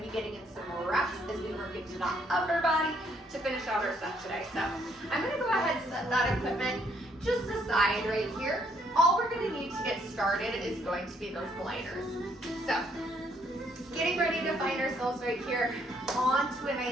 be getting in some more reps as we work into that upper body to finish out our set today. So I'm gonna go ahead and set that equipment just aside right here. All we're gonna need to get started is going to be those gliders. So getting ready to find ourselves right here onto a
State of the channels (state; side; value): normal; both; correlation 0.69